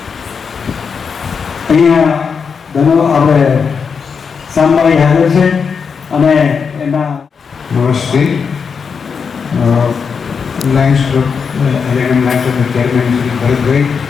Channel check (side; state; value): right; quieter; 5.9 dB